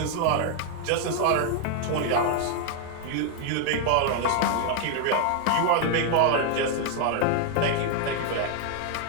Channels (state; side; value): different; both; correlation 0.00